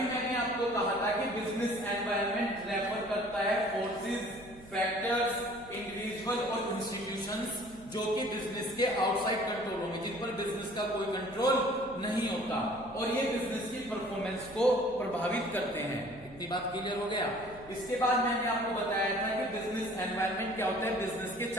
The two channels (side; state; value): right; noise; hum, 19 dB below the sound